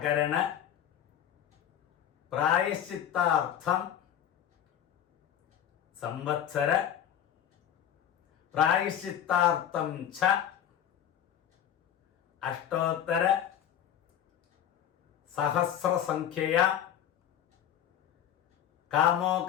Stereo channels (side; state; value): right; quieter; 10.1 dB